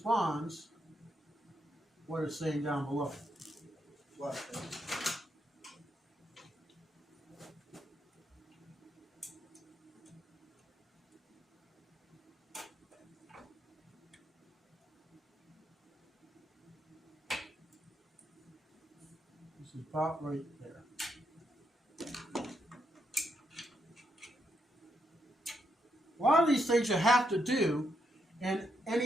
what it's saying down below. What? This is about right there. A lot of these things you have to do in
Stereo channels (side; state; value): both; normal; correlation 0.79